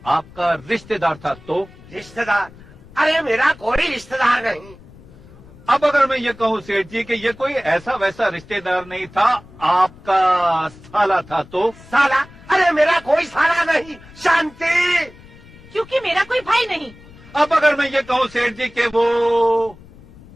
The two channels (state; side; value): noise; left; rumble, 22 dB below the sound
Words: आपका रिश्तेदार था, तो? रिश्तेदार? अरे मेरा कोई रिश्तेदार नहीं। अब अगर मैं ये कहूँ सेठ जी कि ये कोई ऐसा वैसा रिश्तेदार नहीं था, आपका साला था, तो? साला? अरे मेरा कोई साला नहीं। शांति। क्योंकि मेरा कोई भाई नहीं। अब अगर मैं ये कहूँ सेठ जी कि वो